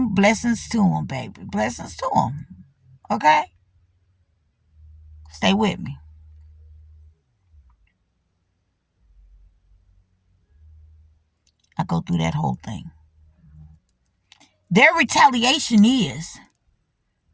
Blessings to him, baby. Blessings to him. Okay? Stay with me. I go through that whole thing. Their retaliation is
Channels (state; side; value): identical; both; correlation 1.00